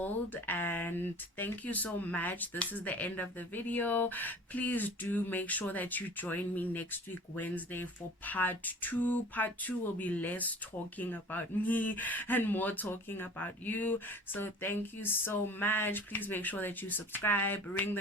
And thank you so much. This is the end of the video. Please do make sure that you join me next week Wednesday for part 2. Part 2 will be less talking about me and more talking about you. So thank you so much. Please make sure that you subscribe, ring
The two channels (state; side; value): normal; both; correlation 0.43